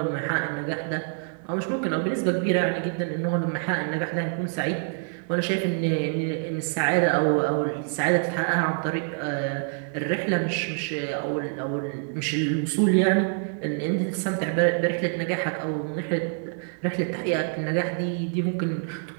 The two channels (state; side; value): silent; left; 56 dB below the other